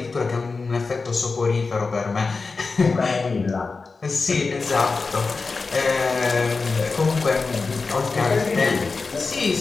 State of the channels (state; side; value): quieter; right; 4.2 dB